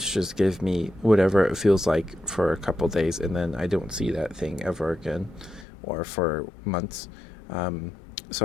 just give me whatever it feels like for a couple days, and then I don't see that thing ever again, or for months.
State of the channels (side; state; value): right; drops out; at 5.7 s